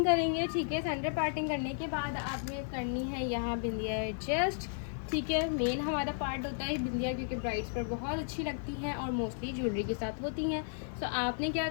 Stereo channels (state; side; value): silent; right; digital silence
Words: करेंगे, ठीक है। सेंटर पार्टिंग करने के बाद आपने करनी है यहाँ बिंदिया एडजस्ट, ठीक है। मेन हमारा पार्ट होता है बिंदिया, क्योंकि ब्राइड्स पर बहुत अच्छी लगती हैं और मोस्टली ज्वेलरी के साथ होती हैं। सो आपने क्या